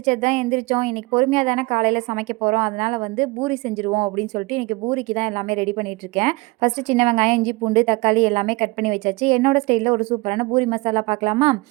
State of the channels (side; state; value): left; quieter; 24.2 dB